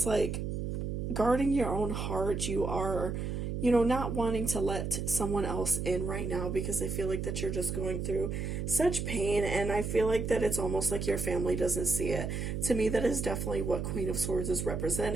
like guarding your own heart. You are, not wanting to let someone else in right now, because I feel like that you're just going through such pain, and I feel like that it's almost like your family doesn't see it. To me, that is definitely what Queen of Swords is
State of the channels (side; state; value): right; noise; hum, 3 dB below the sound